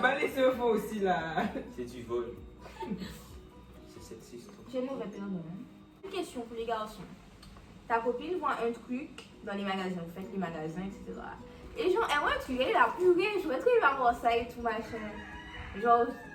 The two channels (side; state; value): both; identical; correlation 1.00